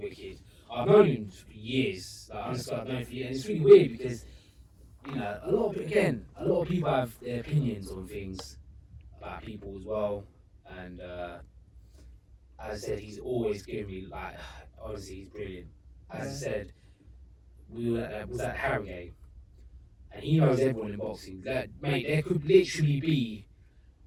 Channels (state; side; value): identical; both; correlation 1.00